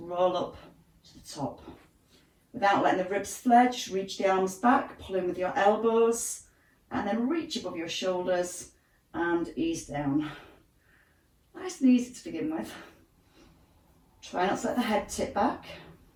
roll up to the top. Without letting the ribs flare, just reach the arms back, pull in with your elbows, and then reach above your shoulders and ease down. Nice and easy to begin with. Try not to let the head tip back.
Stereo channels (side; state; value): both; identical; correlation 1.00